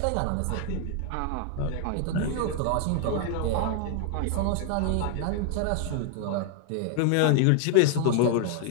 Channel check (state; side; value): different; both; correlation 0.00